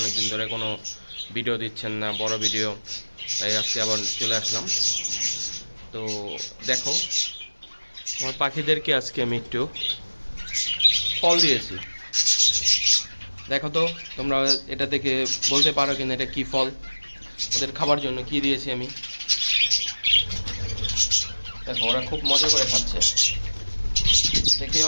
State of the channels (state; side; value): inverted; both; correlation -1.00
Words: ধরে কোনো ভিডিও দিচ্ছেন না, বড় ভিডিও। তাই আজকে আবার চলে আসলাম। তো দেখো, আমার পাখিদেরকে আজকে আমি একটু ফল দিয়েছি। দেখো তো তোমরা এটা থেকে বলতে পারো কিনা এটা কি ফল, ওদের খাবার জন্য কি দিয়েছি আমি। দেখো ওরা খুব মজা করে খাচ্ছে, দেখে